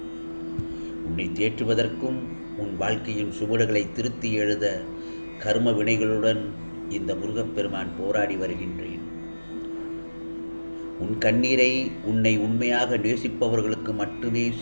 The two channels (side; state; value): both; inverted; correlation -1.00